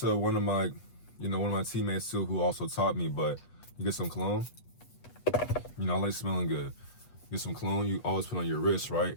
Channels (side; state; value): right; late; 8.2 ms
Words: one of my teammates too, who also taught me, but you get some cologne. I like smelling good. Get some cologne, you always put on your wrist, right?